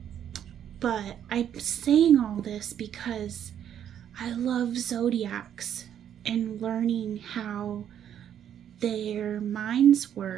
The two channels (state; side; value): quieter; left; 9.7 dB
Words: But I'm saying all this because I love zodiacs and learning how their minds